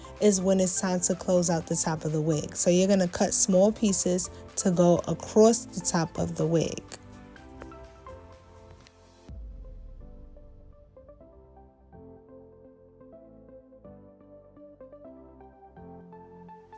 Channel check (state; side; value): identical; both; correlation 1.00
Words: is when it's time to close out the top of the wig. So you're going to cut small pieces to go across the top of the wig.